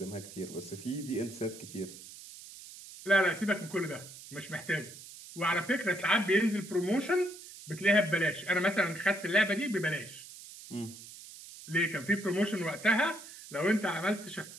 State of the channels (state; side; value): noise; right; hiss, 15 dB below the sound